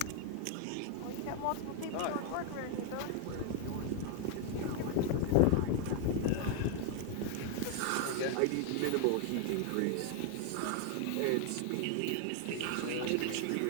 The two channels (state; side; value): different; both; correlation 0.00